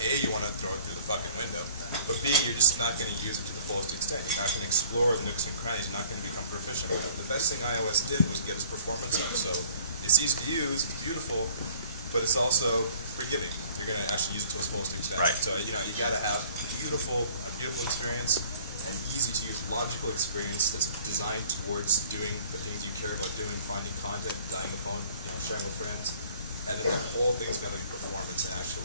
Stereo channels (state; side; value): inverted; both; correlation -0.53